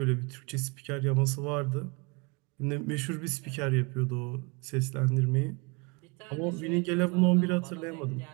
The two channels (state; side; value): quieter; left; 29.4 dB